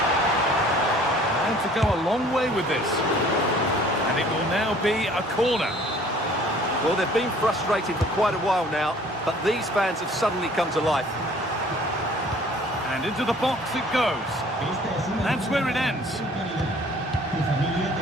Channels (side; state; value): both; normal; correlation 0.53